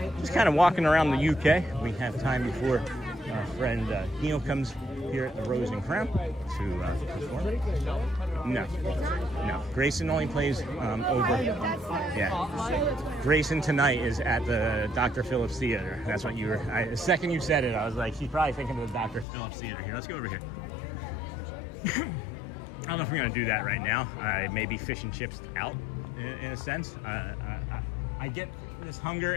just kind of walking around the UK. We have time before our friend Neil comes here at the Rose and Crown to perform. No. Grayson only plays over. Yeah. Grayson tonight is at the Dr. Phillips Theater. That's what you were. The second you said it, I was like, she's probably thinking of the Dr. Phillips Theater here. Let's go over here. I don't know if we're going to do that right now. I may be fish and chips out in a sense. I get this hunger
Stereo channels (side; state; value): right; drops out; at 19.2 s